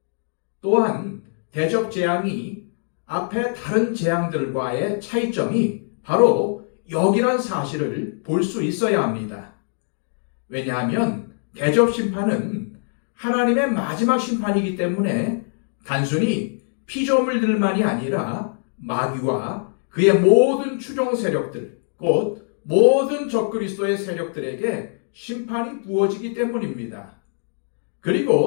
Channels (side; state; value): right; silent; digital silence